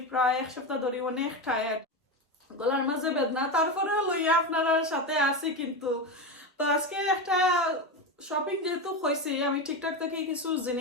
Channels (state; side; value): normal; both; correlation 0.17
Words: প্রায় এক সপ্তাহ ধরে অনেক টায়ার্ড গলার মাঝে বেদনা তারপরে লইয়া আপনারা সাথে আছি কিন্তু তো আজকে একটা শপিং যেহেতু হয়েছে আমি ঠিকঠাক থেকে কিছু